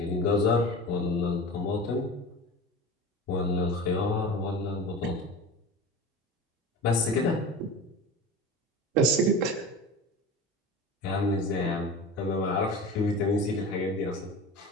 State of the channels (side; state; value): both; normal; correlation 0.33